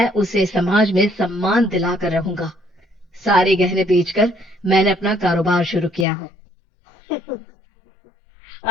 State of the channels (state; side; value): drops out; right; at 6.1 s